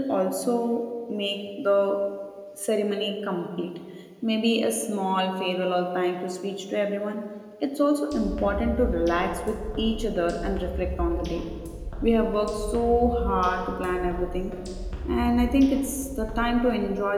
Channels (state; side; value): identical; both; correlation 1.00